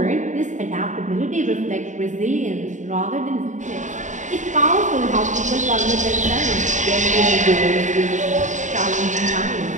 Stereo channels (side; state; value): left; late; 0.36 ms